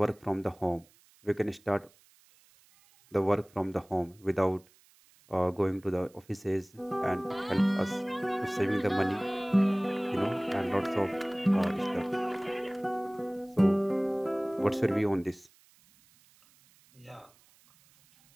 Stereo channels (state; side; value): noise; right; hiss, 30 dB below the sound